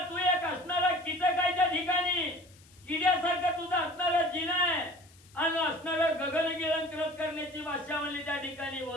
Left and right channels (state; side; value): noise; left; hiss, 26 dB below the sound